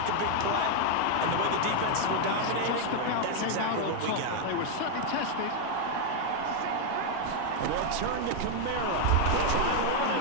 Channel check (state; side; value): different; both; correlation 0.00